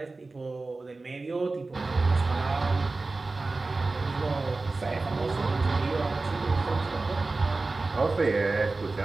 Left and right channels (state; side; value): quieter; left; 3.5 dB